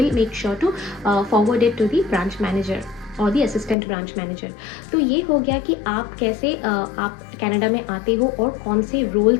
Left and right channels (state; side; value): drops out; right; at 3.8 s